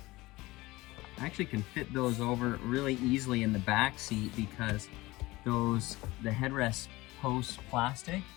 actually can fit those over really easily in the back seat because the headrest post plastic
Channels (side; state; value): right; quieter; 20.1 dB